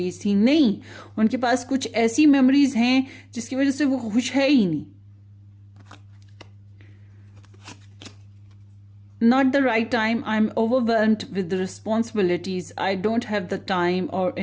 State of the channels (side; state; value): both; identical; correlation 1.00